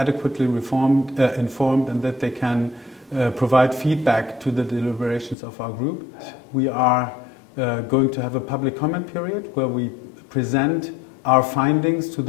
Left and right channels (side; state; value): right; drops out; at 5.4 s